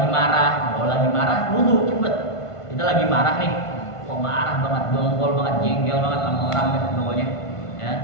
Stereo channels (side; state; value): right; late; 1.5 ms